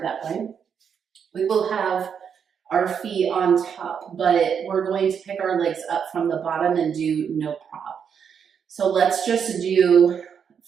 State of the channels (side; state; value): left; quieter; 7.3 dB